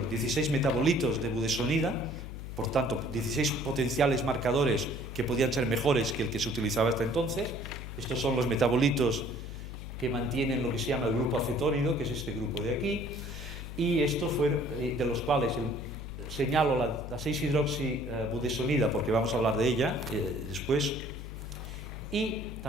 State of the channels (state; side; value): noise; left; hum, 8 dB below the sound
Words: 16 metabolitos de budesonida, por tanto, 16 potenciales marcadores que podían ser mejores que el que se utilizaba hasta entonces. Estos son los metabolitos que mantienen lo que se llama el grupo acetónido, que es este grupo de aquí, y estos fueron de los cuales señalo la 6-hidroxibudesonida, porque vamos a hablar de ella después, y